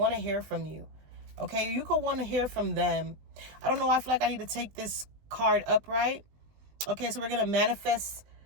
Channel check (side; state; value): left; late; 20 ms